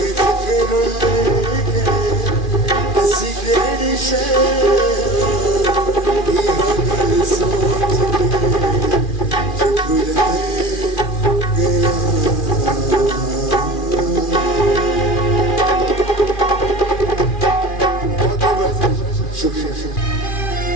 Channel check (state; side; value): late; right; 2.4 ms